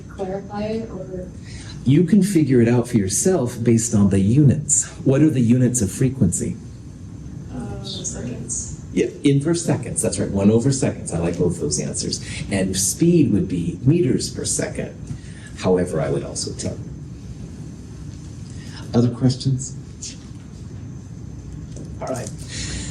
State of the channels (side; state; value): both; identical; correlation 1.00